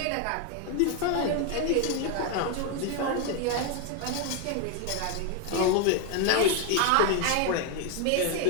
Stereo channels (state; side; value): different; both; correlation 0.01